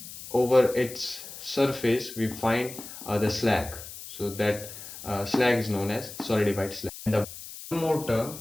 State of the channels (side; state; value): left; noise; hiss, 13 dB below the sound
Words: over its surface we find the slag. So that slag is known as solidified slag. And the one more term,